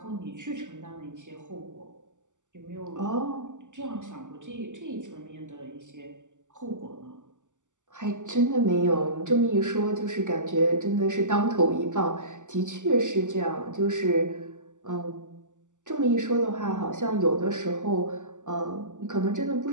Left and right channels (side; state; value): left; late; 0.86 ms